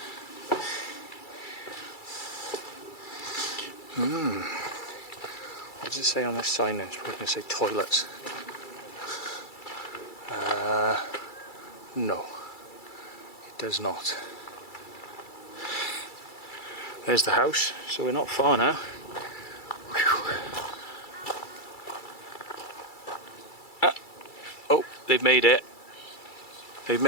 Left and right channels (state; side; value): late; right; 2.3 ms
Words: What does it say on this sign then? It's probably going to say toilets. No, it does not. There's the house, so we're not far now. Oh, they've made it. They've